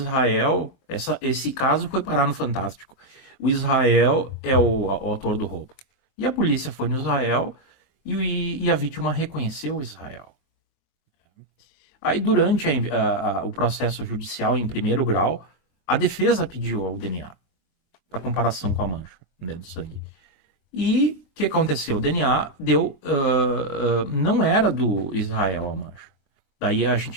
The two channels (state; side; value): late; right; 23 ms